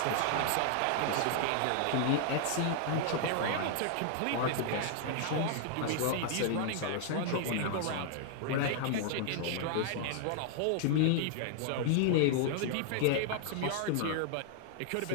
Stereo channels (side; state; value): both; different; correlation 0.00